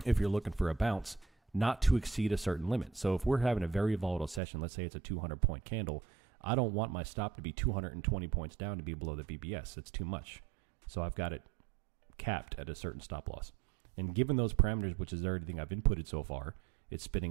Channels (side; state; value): left; drops out; at 4.4 s